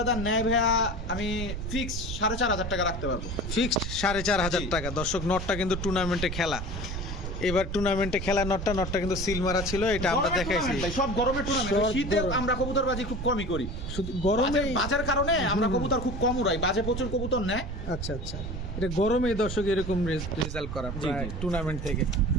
নেয় ভাইয়া, আমি ফিক্স 4500 টাকা রাখতে পারবো। ফিক্সড 4500 জি। টাকা। দর্শক নটটা কিন্তু টুর্নামেন্টে খেলা, এবার টুর্নামেন্টে খেলা নটটা কিন্তু সিল মারা ছিল, এটা আমরা গরমের দেখাইছি। tournament ভাই, সব গরমের টুর্নামেন্ট। সব শীতে গরম। আমরা কবুতরবাজি খুব কমই করি, শুধু গরমে। বাজের কারণে আমরা কবুতর খুব কম উড়াই, বাজে প্রচুর কবুতর নেয়। আচ্ছা আচ্ছা, এটা গরমে দর্শক এরকম রেজাল্ট করা জি, জি। টুর্নামেন্ট থেকে।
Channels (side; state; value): right; noise; rumble, 5 dB below the sound